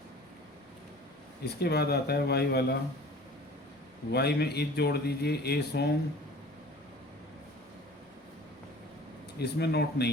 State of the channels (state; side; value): normal; both; correlation 0.45